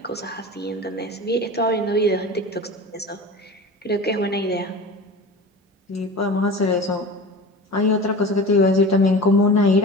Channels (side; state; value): both; normal; correlation 0.34